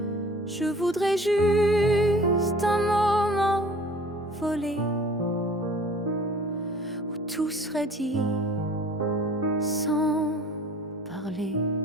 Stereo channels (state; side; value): normal; both; correlation 0.48